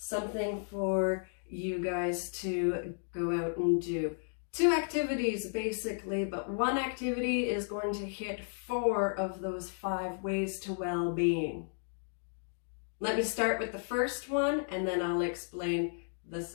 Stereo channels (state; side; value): silent; right; digital silence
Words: for you guys to go out and do. 2 activities basically, but one activity is going to hit 4 of those 5 ways to well-being. Let me start with the first one and then I'll explain the